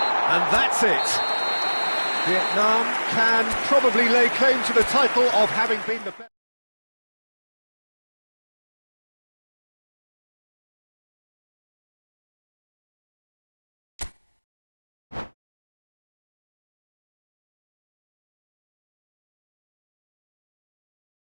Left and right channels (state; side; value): inverted; both; correlation -1.00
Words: And that's it. Vietnam can probably lay claim to the title of having been the best.